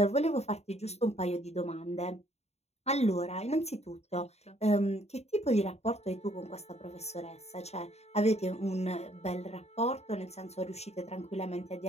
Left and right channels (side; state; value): right; late; 0.31 ms